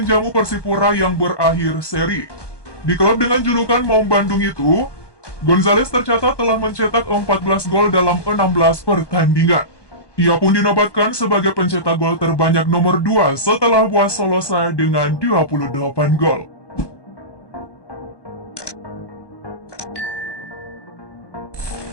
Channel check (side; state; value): right; late; 1.2 ms